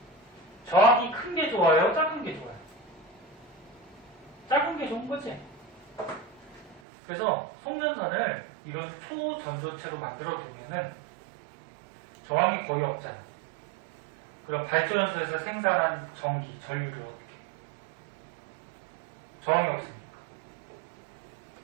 저항이 큰 게 좋아요? 작은 게 좋아요? 작은 게 좋은 거지. 그래서 송전선을 이런 초전도체로 만들어 두면은 저항이 거의 없잖아. 그럼 발전소에서 생산한 전기, 전류를 어떻게 해? 저항이 없으니까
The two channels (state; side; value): drops out; left; at 6.8 s